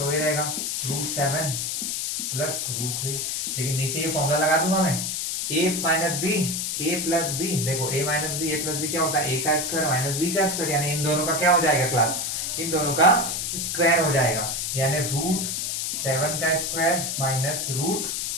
वही रहेगा √7 + √3। लेकिन नीचे ये फॉर्मूला लगा दूंगा मैं, a - b a + b, देखो a - b a + b क्या होता है, a का स्क्वायर माइनस b का स्क्वायर, यानी इन दोनों का क्या हो जाएगा क्लास, इन दोनों का स्क्वायर हो जाएगा, यानी √7 का स्क्वायर माइनस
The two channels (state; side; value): noise; left; hiss, 1 dB below the sound